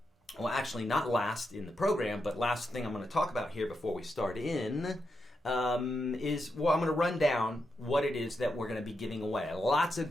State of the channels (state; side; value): normal; both; correlation 0.85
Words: well, actually not last in the program, but last thing I'm going to talk about here before we start in is, I'm going to run down what it is that we're going to be giving away. Lots of